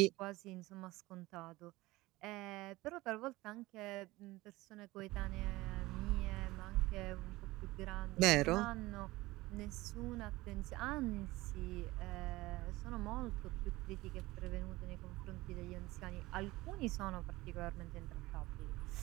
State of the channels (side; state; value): left; quieter; 19.5 dB